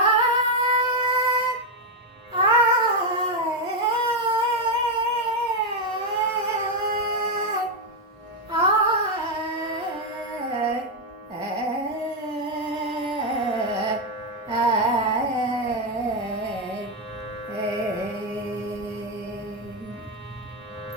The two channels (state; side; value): normal; both; correlation 0.04